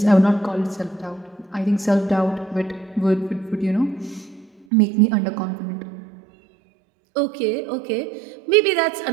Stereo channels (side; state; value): left; drops out; at 4.7 s